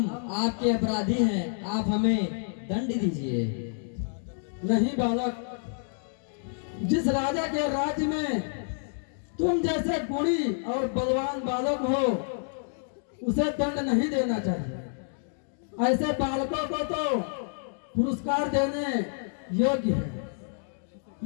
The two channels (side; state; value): right; silent; digital silence